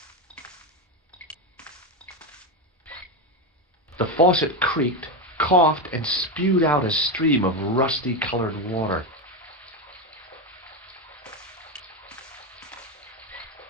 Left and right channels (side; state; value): both; normal; correlation 0.12